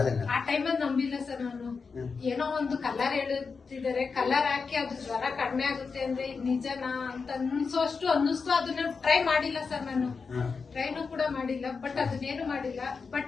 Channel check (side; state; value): right; quieter; 5.0 dB